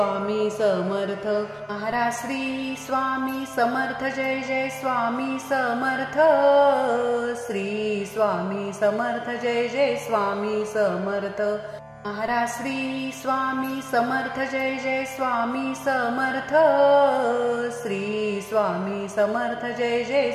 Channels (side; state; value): both; identical; correlation 1.00